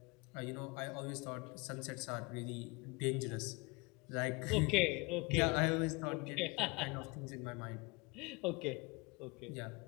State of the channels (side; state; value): right; quieter; 26.7 dB